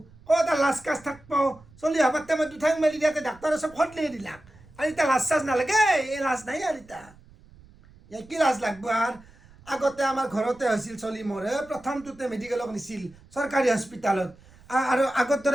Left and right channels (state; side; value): noise; right; rumble, 25 dB below the sound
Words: এটা লাজ কাজ থাকব চলি হবাতে মই দুঠাং মেলি দিয়াতে ডাক্তৰে চব সদলি দিলাক আর ইটা লাজ চাজ নালাগে এই লাজ নাই আর ইটা কি লাজ লাগব আর আগতে আমার ঘরতে হয়েছিল চলি মরে প্রথমটোতে মেডিকেলক নিছিল সরকারি হসপিটালত আর আগত